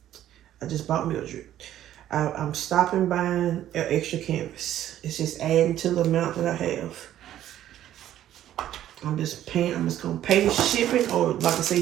I just bought Mildred. I'm stopping buying an extra canvas. It's just adding to the amount that I have. I'm just going to pay the shipping, or like I say,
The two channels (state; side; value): quieter; left; 12.1 dB